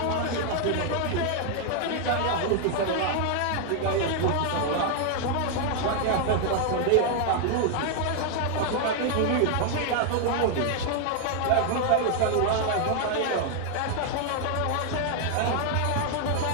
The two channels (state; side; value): different; both; correlation 0.00